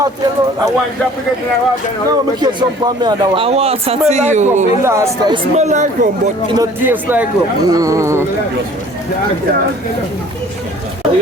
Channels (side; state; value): both; normal; correlation 0.51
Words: want to get in water. No, me get some for me and that one. A water Smell to like rum. you. It last time. It smell like rum, but it not taste like rum.